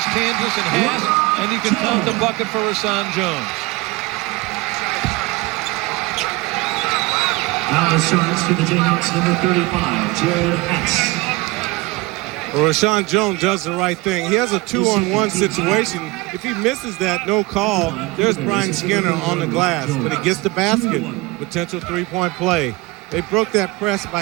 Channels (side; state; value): left; quieter; 21.9 dB